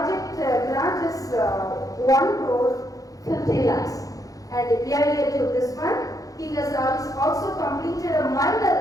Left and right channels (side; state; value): right; late; 0.17 ms